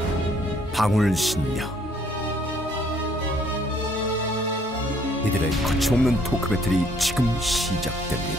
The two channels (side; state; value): both; normal; correlation 0.64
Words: 방울신녀. 이들의 거침없는 토크 배틀이 지금